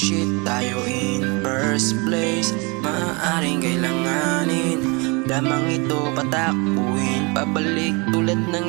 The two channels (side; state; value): left; quieter; 29.0 dB